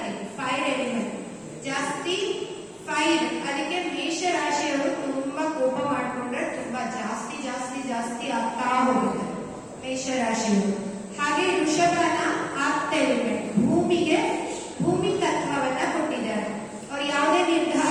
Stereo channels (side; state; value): both; identical; correlation 1.00